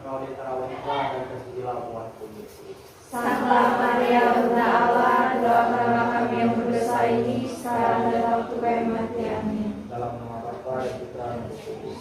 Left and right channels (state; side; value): identical; both; correlation 1.00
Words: kau di antara wanita dan terpujilah buatku Yesus. Santa Maria Bunda Allah, doakanlah kami yang berdosa ini sekarang dan waktu kematian. Amin. Dalam nama Bapa dan Putra dan Roh